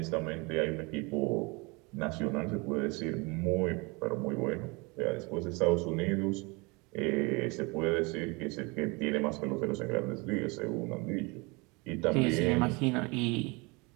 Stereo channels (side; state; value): left; quieter; 27.4 dB